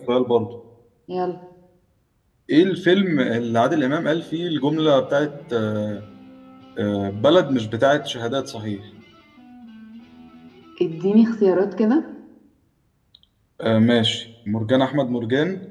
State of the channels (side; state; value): both; identical; correlation 1.00